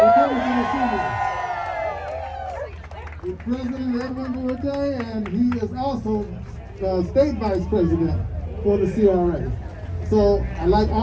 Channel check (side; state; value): both; identical; correlation 1.00